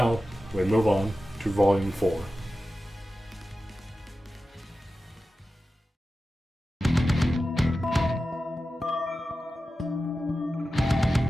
we move on to volume 4.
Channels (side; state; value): both; normal; correlation 0.93